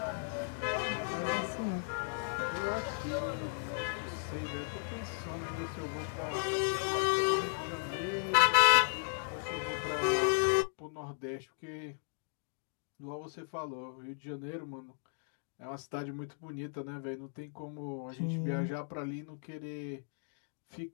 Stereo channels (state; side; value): silent; right; digital silence